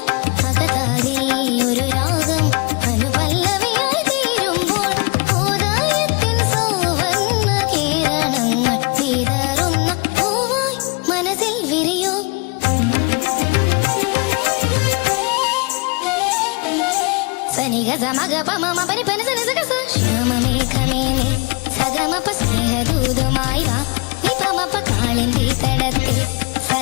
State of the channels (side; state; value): right; quieter; 29.2 dB